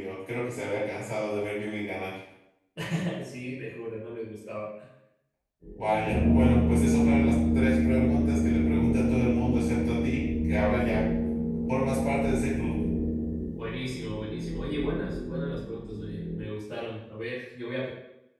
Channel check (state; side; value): identical; both; correlation 1.00